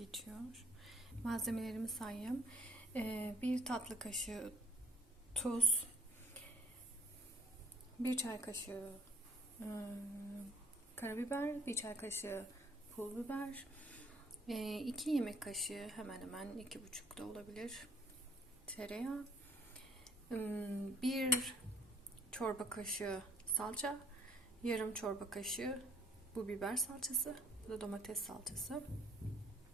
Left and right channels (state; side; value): normal; both; correlation 0.60